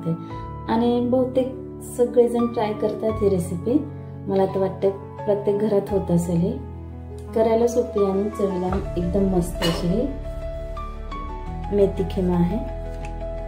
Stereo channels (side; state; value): both; identical; correlation 1.00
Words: आणि बहुतेक सगळेजण ट्राय करतात ही रेसिपी। मला तर वाटतं प्रत्येक घरात होत असेल। ही करायला सोपी आणि चवीला एकदम मस्त अशी ही मेथी खिमा आहे।